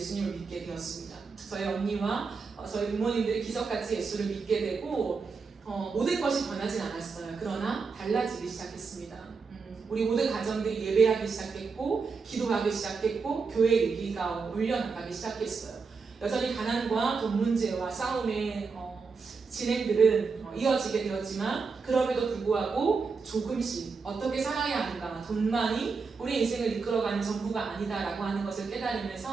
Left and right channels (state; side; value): quieter; left; 4.9 dB